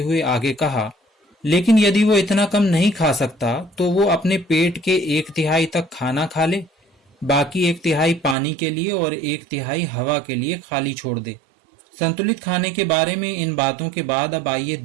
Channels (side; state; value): left; drops out; at 8.3 s